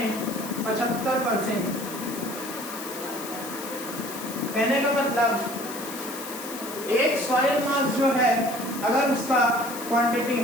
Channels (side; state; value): left; noise; hiss, 11 dB below the sound